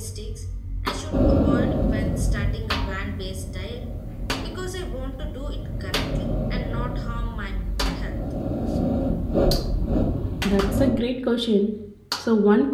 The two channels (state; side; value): identical; both; correlation 1.00